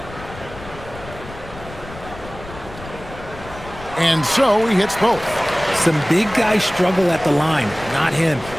And so he hits both. Some big guys struggle at the line, not him.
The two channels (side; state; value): left; noise; rumble, 15 dB below the sound